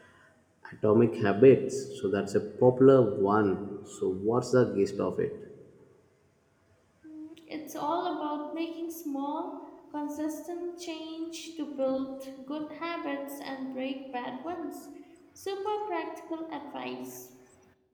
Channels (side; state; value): both; identical; correlation 1.00